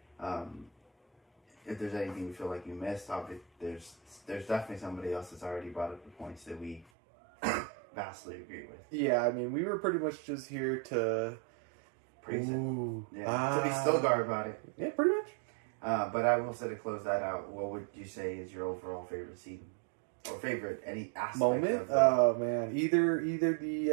if there's anything we feel like you missed, there's definitely somebody else that's already brought up the points that we vastly agree with. Yeah, I mean, we were pretty much just here to praise it. Yeah, to be still guard about it. Yeah, pretty much. But I will say to close that out, what would you say is your overall favorite scene? Or favorite any aspect moment? Oh man, either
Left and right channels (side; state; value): left; drops out; at 6.9 s